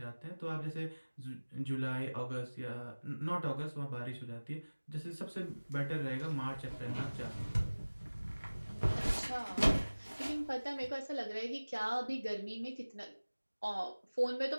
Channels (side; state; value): both; inverted; correlation -1.00